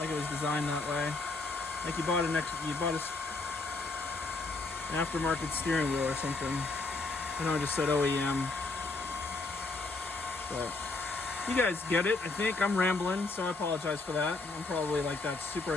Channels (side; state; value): right; quieter; 3.5 dB